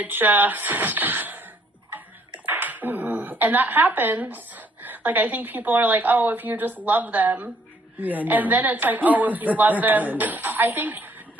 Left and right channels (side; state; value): both; normal; correlation 0.65